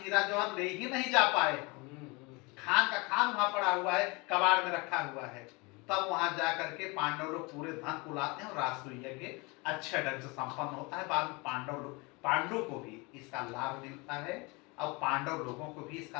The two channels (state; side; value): quieter; right; 27.1 dB